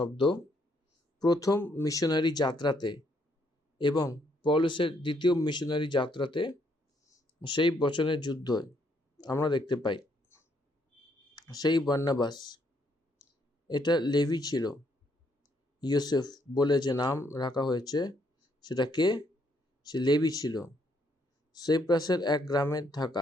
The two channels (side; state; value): both; normal; correlation 0.72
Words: প্রথম মিশনারি যাত্রাতে এবং পৌলুসের দ্বিতীয় মিশনারি যাত্রাতে সেই বচনের যুদ্ধ আমরা দেখতে পাই। সেই বর্ণবাস এটা লেভি ছিল। ইউসুফ বলে যে নাম রাখা হয়েছে সেটা কে? সে লেভি ছিল, সাইপ্রাসের এক গ্রামে